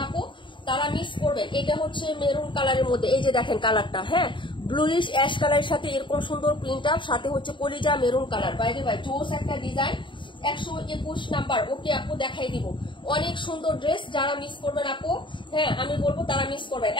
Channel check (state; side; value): late; right; 0.23 ms